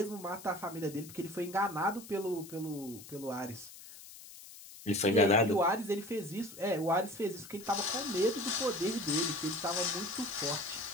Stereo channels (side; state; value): left; noise; hiss, 16 dB below the sound